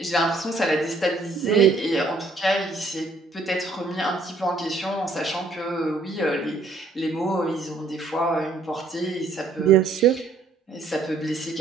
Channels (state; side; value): quieter; left; 3.4 dB